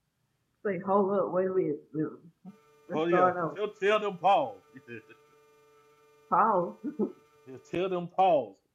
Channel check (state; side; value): identical; both; correlation 1.00